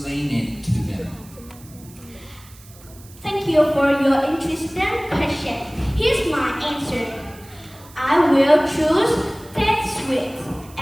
it to them? Thank you for your interesting question. Here's my answer. I will choose Tết sweets,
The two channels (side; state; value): right; noise; hiss, 23 dB below the sound